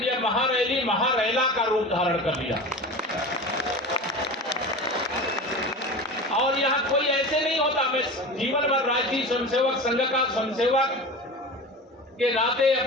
यह महारैली महारैला का रूप धारण कर लिया। और यहाँ कोई ऐसे नहीं होता, मैं जीवन भर राष्ट्रीय स्वयंसेवक संघ का स्वयंसेवक के नाते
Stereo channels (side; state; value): both; normal; correlation 0.31